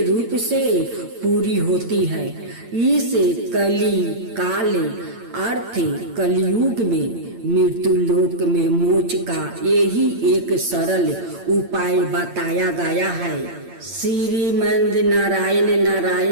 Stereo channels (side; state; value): left; late; 8.8 ms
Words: रूप से पूरी होती है। इस कली काल अर्थ कलयुग में मृत्यु लोक में मोक्ष का यही एक सरल उपाय बताया गया है। श्रीमंद नारायण